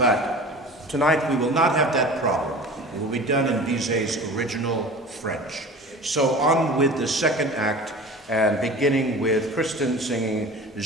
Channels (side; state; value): both; normal; correlation 0.39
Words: tonight we will not have that problem. It will be done in Bizet's original French. So on with the second act, and beginning with Kristen singing